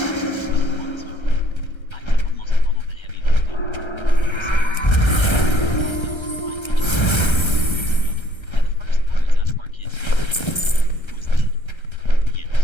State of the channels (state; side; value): late; right; 1.3 ms